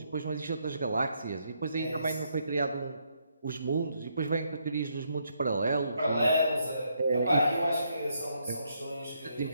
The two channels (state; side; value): inverted; both; correlation -0.75